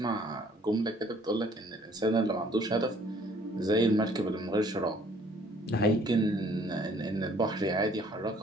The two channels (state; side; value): normal; both; correlation 0.59